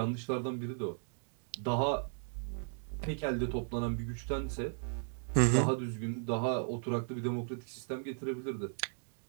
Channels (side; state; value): left; silent; digital silence